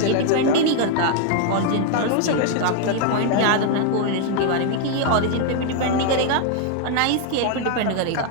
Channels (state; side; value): different; both; correlation 0.00